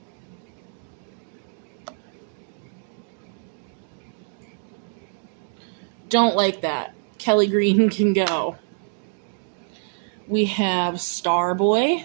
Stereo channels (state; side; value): silent; left; digital silence